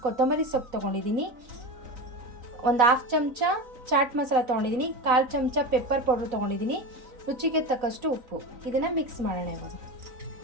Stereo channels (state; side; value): late; left; 3.9 ms